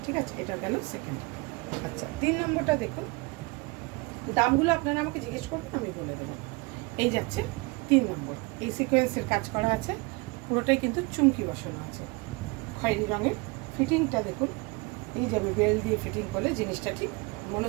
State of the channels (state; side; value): quieter; left; 26.9 dB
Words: ঠিক আছে? এটা গেল সেকেন্ড। আচ্ছা, 3 নম্বরটা দেখুন। দামগুলো আপনারা আমাকে জিজ্ঞেস করবেন, আমি বলে দেবো। এই যাচ্ছে 3 নম্বর। এই সিকোয়েন্সের কাজ করা আছে, পুরোটাই কিন্তু চুমকি বসানো আছে খয়েরি রঙের। ফিটিংটা দেখুন, এই যাবে বেল্ট দিয়ে ফিটিং করলে জিনিসটা ঠিক মনে